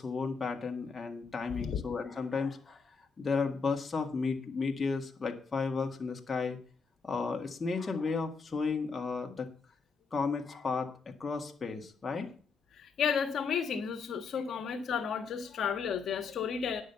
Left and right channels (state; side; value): quieter; right; 5.0 dB